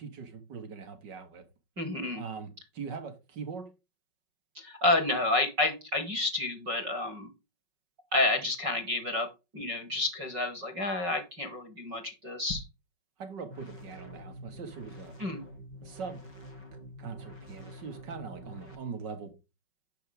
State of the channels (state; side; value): late; left; 5.4 ms